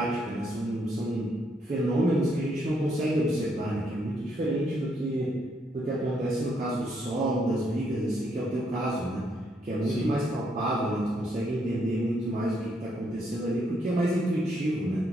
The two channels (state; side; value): normal; both; correlation 0.74